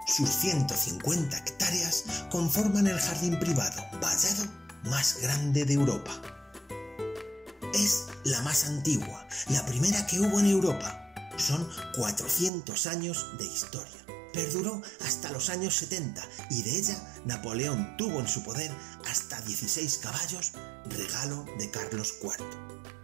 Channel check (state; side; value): drops out; left; at 12.5 s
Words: Sus 150 hectáreas conforman el jardín privado vallado más grande de Europa. Es la más antigua, la primera que hubo en Europa. Son 400 años de historia. Perduró hasta los años 70 y de ella Napoleón tuvo en su poder hasta 16 caballos, regalo de Carlos IV.